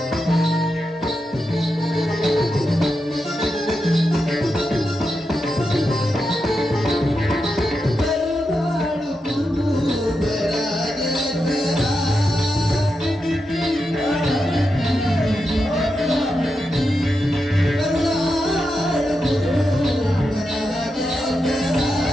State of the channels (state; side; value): normal; both; correlation 0.87